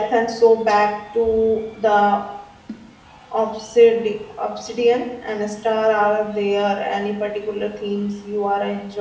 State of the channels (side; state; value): both; identical; correlation 1.00